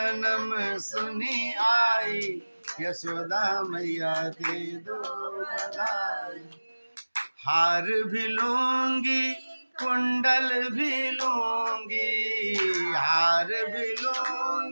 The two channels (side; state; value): both; inverted; correlation -1.00